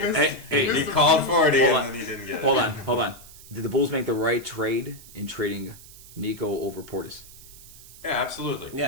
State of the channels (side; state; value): right; noise; hiss, 19 dB below the sound